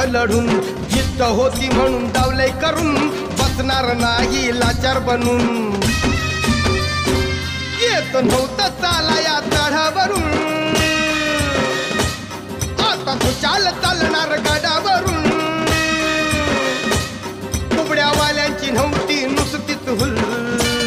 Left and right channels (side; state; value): both; identical; correlation 1.00